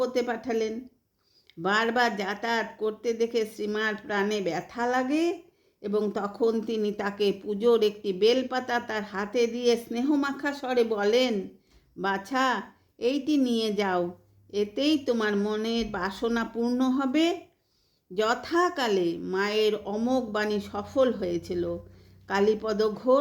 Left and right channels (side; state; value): both; identical; correlation 1.00